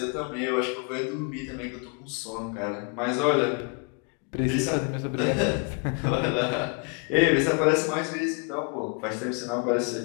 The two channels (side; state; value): right; quieter; 37.1 dB